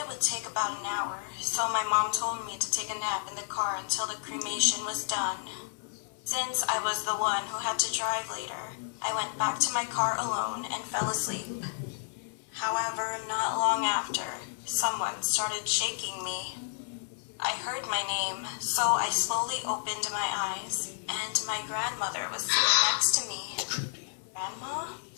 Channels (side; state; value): right; silent; 57 dB below the other